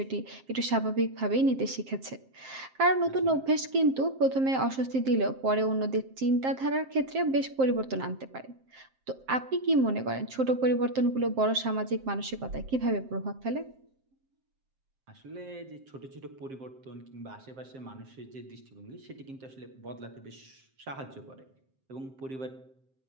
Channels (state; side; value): late; left; 7.6 ms